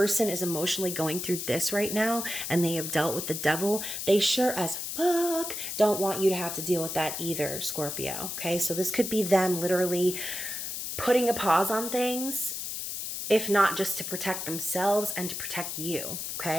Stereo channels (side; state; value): left; noise; hiss, 5 dB below the sound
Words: is emotionally going through this right now and they have dealt with the devil, they sure as fuck don't want you to have to deal with that either, Scorpio. Okay, so this could be them literally putting a pause on things, if not just to protect themselves and to protect you.